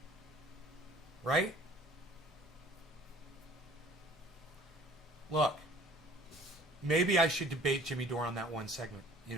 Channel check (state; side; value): normal; both; correlation 0.51